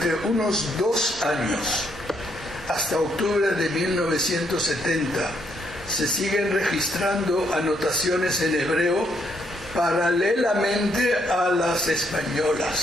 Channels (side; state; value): both; normal; correlation 0.73